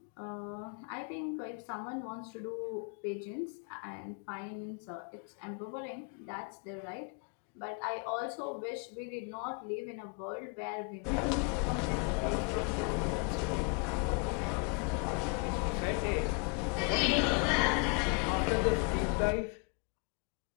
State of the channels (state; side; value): quieter; right; 34.5 dB